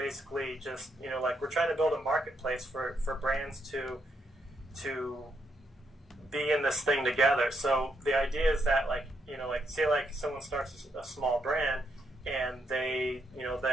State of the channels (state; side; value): normal; both; correlation 0.78